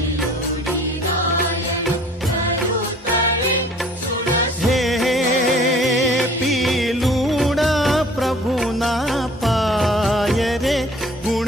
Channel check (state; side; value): normal; both; correlation 0.52